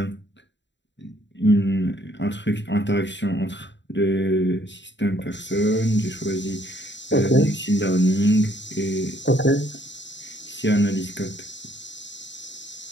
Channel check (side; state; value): right; late; 0.52 ms